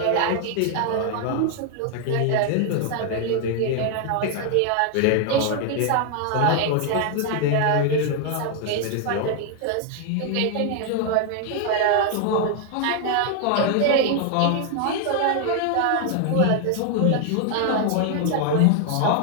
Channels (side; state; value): both; different; correlation 0.00